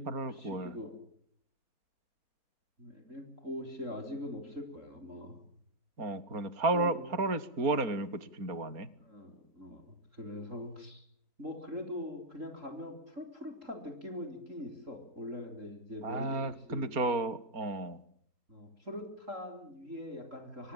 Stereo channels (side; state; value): left; late; 4.2 ms